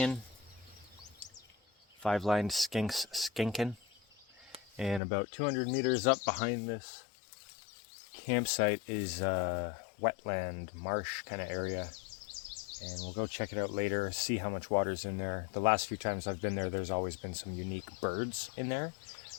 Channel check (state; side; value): drops out; right; at 5.0 s